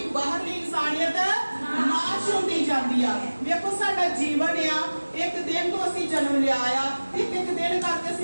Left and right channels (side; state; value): both; inverted; correlation -1.00